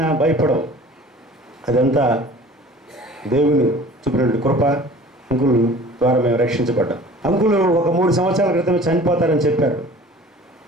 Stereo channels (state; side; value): normal; both; correlation 0.46